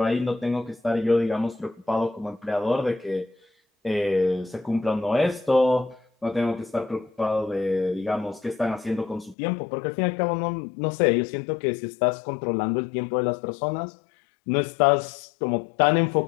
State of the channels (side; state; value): right; drops out; at 9.3 s